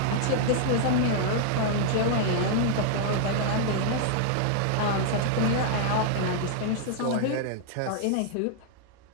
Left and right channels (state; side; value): different; both; correlation -0.01